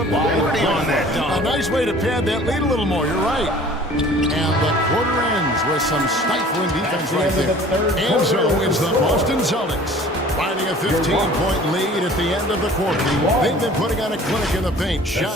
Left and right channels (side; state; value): both; normal; correlation 0.48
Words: Liberty on that dunk? A nice way to pad that lead a little more. You're right. And the quarter ends with some stifling defense right there. And so it's the Boston Celtics finding a 15-point lead at the end of the quarter. They've been putting on a clinic in the paint.